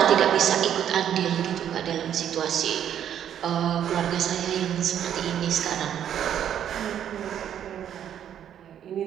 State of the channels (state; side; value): quieter; left; 9.8 dB